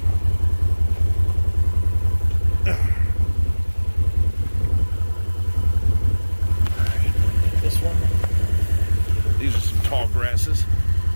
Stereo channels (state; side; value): inverted; both; correlation -1.00